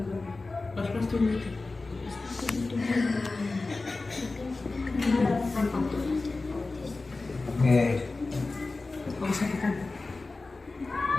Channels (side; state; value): right; quieter; 3.5 dB